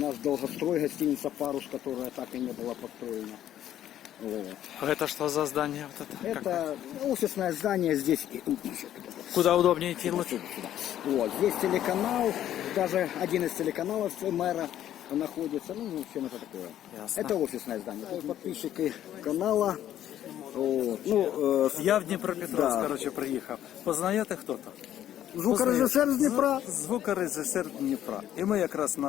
долгострой, гостиница «Парус», которая так и не была построена. Вот. А это что за здание? Вот это? Это офисное здание здесь. Куда удобнее идти Вот лучше? сюда, сюда. Вот, здесь телеканал, даже один из телеканалов мэра находится. Ну, в общем, это такое. Ясно. Это офисное здание. Это подписчики канала. Вот. Ну, Я в Дніпропетровськ, Да. коротше, приїхав. Познаєте хто-то? звукорежисер з Дніпра. Звукорежисер Дніпра. І ми якраз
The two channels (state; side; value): quieter; right; 11.6 dB